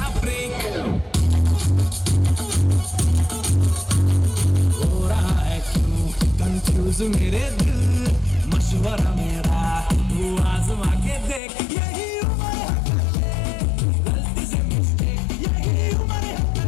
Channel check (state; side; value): drops out; right; at 11.4 s